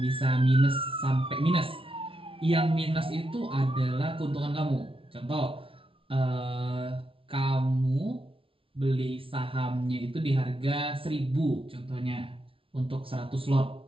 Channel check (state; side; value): late; left; 0.26 ms